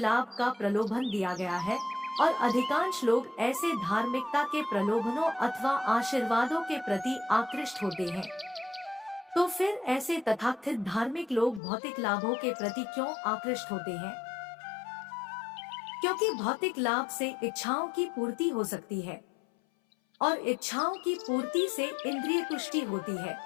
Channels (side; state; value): right; drops out; at 11.6 s